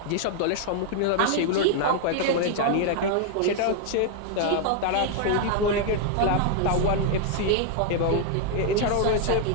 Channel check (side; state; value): both; different; correlation 0.00